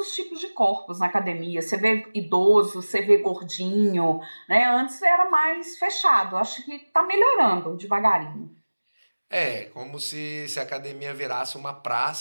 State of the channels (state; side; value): inverted; both; correlation -1.00